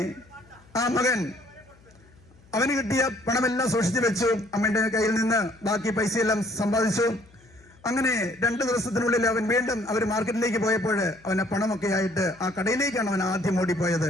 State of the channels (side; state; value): left; noise; hum, 28 dB below the sound